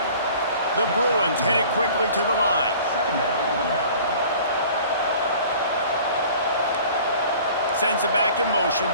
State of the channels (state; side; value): inverted; both; correlation -0.47